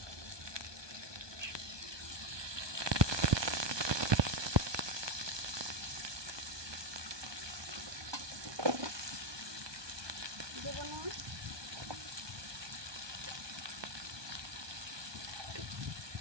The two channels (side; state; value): left; late; 1.2 ms